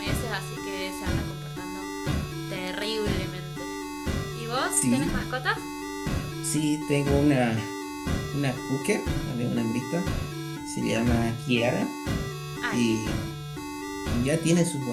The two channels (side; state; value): both; identical; correlation 1.00